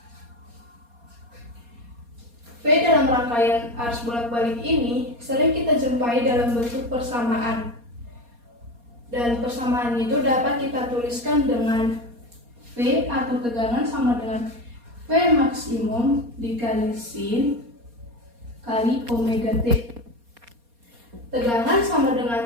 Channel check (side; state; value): left; late; 4.2 ms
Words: V dalam rangkaian arus bolak-balik ini sering kita jumpai dalam bentuk persamaan. Dan persamaan itu dapat kita tuliskan dengan V atau tegangan sama dengan V maksimum dikali sin kali omega T. Tegangan sama